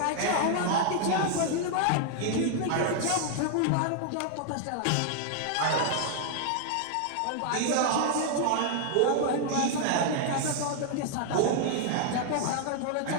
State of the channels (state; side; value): different; both; correlation 0.00